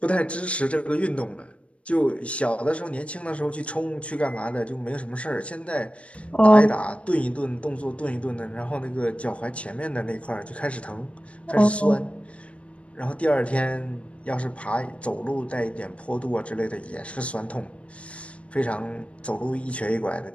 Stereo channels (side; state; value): right; late; 0.062 ms